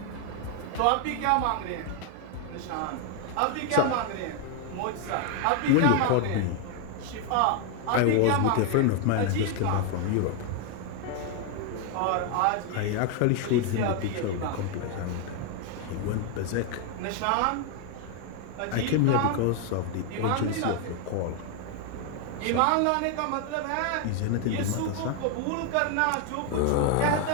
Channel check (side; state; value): both; different; correlation 0.01